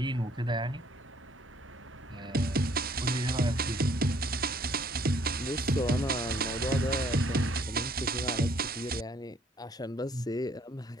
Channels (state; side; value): normal; both; correlation 0.62